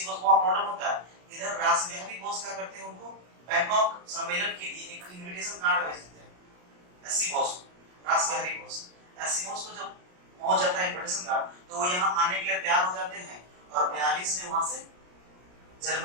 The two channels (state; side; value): late; left; 33 ms